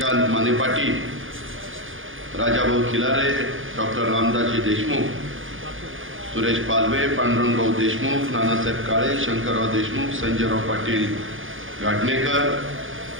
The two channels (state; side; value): late; left; 0.58 ms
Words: माने पाटील, राजाभाऊ खिलारे, डॉक्टर रामदासजी देशमुख, सुरेश पालवे, पांडुरंगभाऊ देशमुख, नानासाहेब काळे, शंकरराव देशमुख, संजयराव पाटील गाडणेकर,